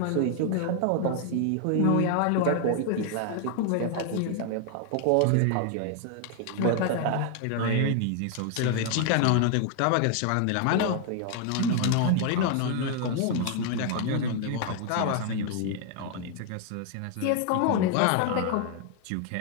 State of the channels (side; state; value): both; different; correlation 0.00